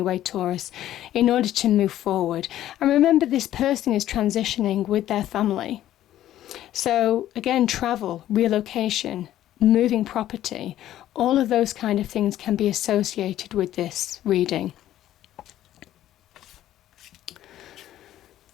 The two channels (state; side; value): quieter; right; 12.8 dB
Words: Taurus, in order to move forward. And remember, this person is transitioning with their family. So again, travel, relocation, moving property, all of those kind of things can be associated with this reading.